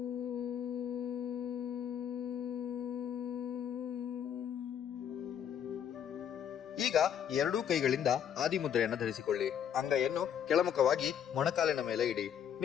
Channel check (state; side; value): quieter; right; 9.0 dB